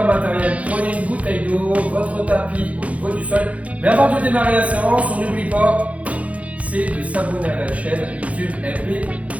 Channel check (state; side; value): late; left; 0.066 ms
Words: matériel. Prenez une bouteille d'eau, votre tapis au niveau du sol. Mais avant de démarrer la séance, on n'oublie pas, c'est de s'abonner à la chaîne YouTube MP